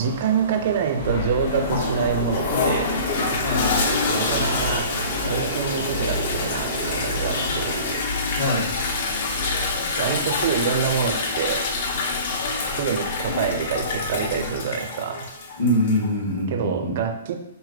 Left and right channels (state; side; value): inverted; both; correlation -0.42